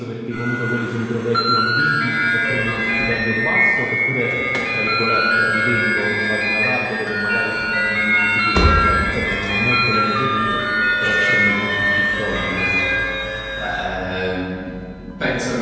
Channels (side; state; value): both; identical; correlation 1.00